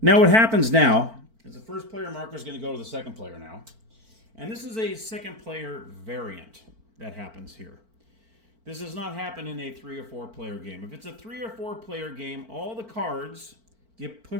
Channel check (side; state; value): left; late; 4.5 ms